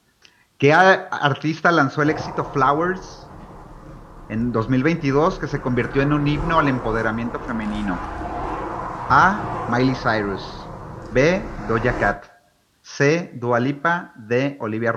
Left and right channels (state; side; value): identical; both; correlation 1.00